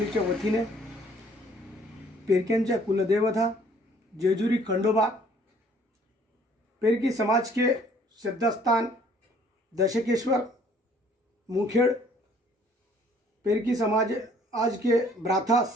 वतीने पेरक्यांच्या कुलदेवता जेजुरी खंडोबा पेरकी समाज के श्रद्धास्थान दशकेश्वर मुखेड़ पेरकी समाज आज के ब्राथा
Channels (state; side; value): normal; both; correlation 0.59